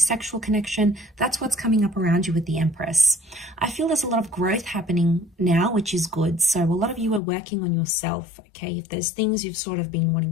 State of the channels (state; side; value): drops out; right; at 7.2 s